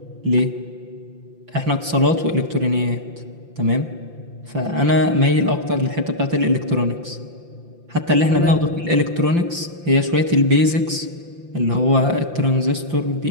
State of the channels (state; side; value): late; left; 5.8 ms